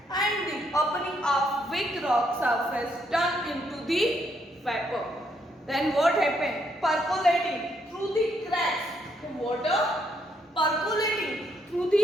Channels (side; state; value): both; normal; correlation 0.74